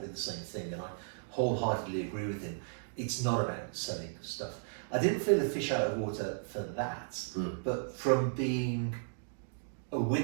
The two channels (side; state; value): left; silent; digital silence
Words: the same thing, and I wholeheartedly agree with him. It's not about selling stuff. I didn't feel a fish out of water for that, but from being a